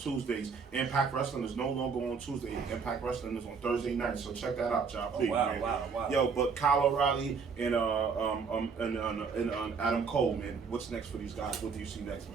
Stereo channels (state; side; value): quieter; left; 5.5 dB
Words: Impact Wrestling is no longer on Tuesday. Impact Wrestling is on Thursday night. So check that out, y'all. Please, wow. Yo, but Kyle O'Reilly and Adam Cole, man. What's next for these guys? What do you see next,